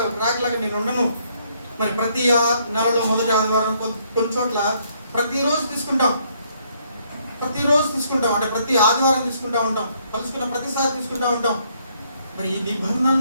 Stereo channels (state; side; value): inverted; both; correlation -0.69